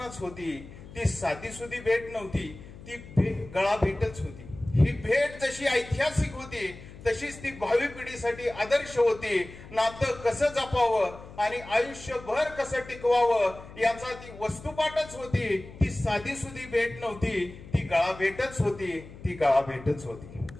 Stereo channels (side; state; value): left; noise; hum, 17 dB below the sound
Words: होती. ती साधी सुधी भेट नव्हती, ती गळा भेटच होती. ही भेट जशी ऐतिहासिक होती तशीच ती भावी पिढीसाठी आदर्श होती. नातं कसं जपावं आणि आयुष्यभर कसं टिकवावं याचा ती वस्तुपाठच होती. ती साधी सुधी भेट नव्हती, ती गळा भेटच होती, ती गळा भेटच होती.